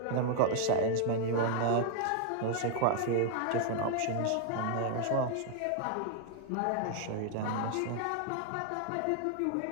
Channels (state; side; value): different; both; correlation 0.00